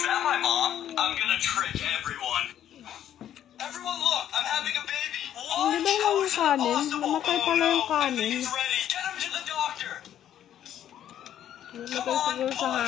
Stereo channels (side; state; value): right; quieter; 10.8 dB